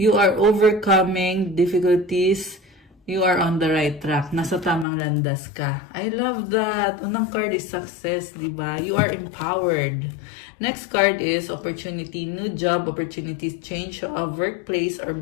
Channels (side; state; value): right; drops out; at 4.9 s